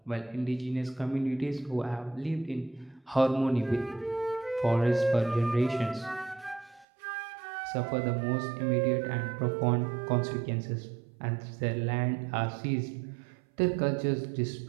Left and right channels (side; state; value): left; drops out; at 6.9 s